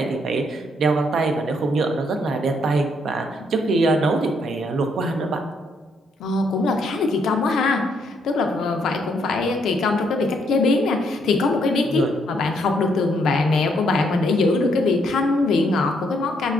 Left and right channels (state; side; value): normal; both; correlation 0.72